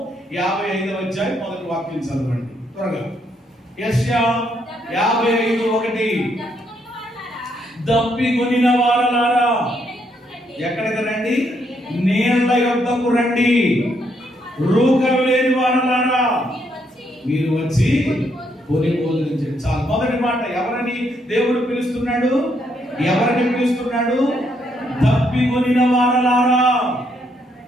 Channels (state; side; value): normal; both; correlation 0.74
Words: 55వ అధ్యాయం మొదటి వాక్యం చదవండి త్వరగా. యెషయా 55:1 దప్పికొనిన వారలారా ఎక్కడికి రండి? నీళ్ల యొద్దకు రండి. రూకలు లేని వారలారా మీరు వచ్చి కొని భోజనించండి. చాలు. మొదటి మాట ఎవరని దేవుడు పిలుస్తున్నాడు? ఎవరిని పిలుస్తున్నాడు? దప్పికొనిన వారలారా,